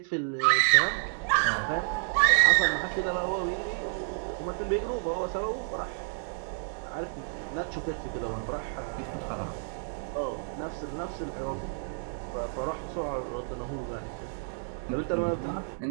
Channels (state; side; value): silent; left; digital silence